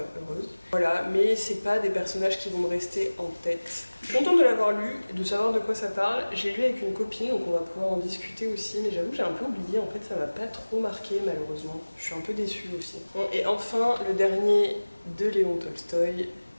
heureuse. Voilà, mais c'est pas des personnages qui vont me rester en tête. Je suis contente de l'avoir lu, de savoir de quoi ça parle. J'ai lu avec une copine, donc on va pouvoir en discuter aussi, mais j'avoue que j'ai un peu oublié, en fait ça m'a pas trop marqué malheureusement. Je suis un peu déçue aussi. Bon, et enfin, le dernier de Léon Tolstoï,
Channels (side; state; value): both; inverted; correlation -1.00